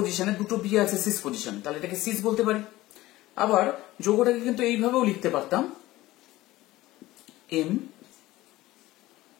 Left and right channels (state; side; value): quieter; right; 17.3 dB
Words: দুটো বি আছে সিস পজিশনে, তাহলে এটাকে সিস বলতে পারি। আবার যৌগটাকে কিন্তু এইভাবেও লিখতে পারতাম, এম